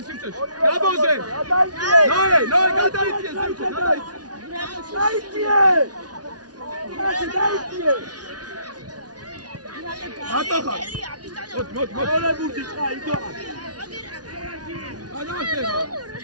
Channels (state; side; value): late; left; 0.69 ms